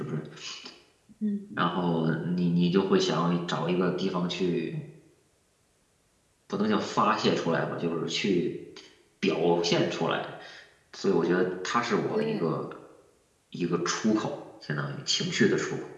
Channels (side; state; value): both; identical; correlation 1.00